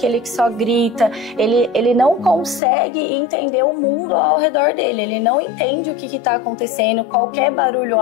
que só grita, ele não consegue entender o mundo ao redor dele, ele não entende o que está acontecendo, qualquer barulho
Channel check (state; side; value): drops out; right; at 2.6 s